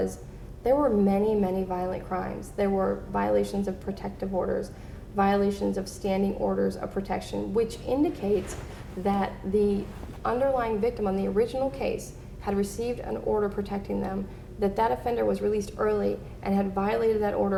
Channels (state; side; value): identical; both; correlation 1.00